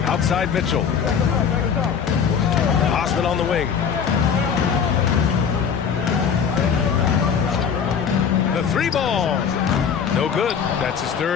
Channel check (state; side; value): quieter; right; 7.1 dB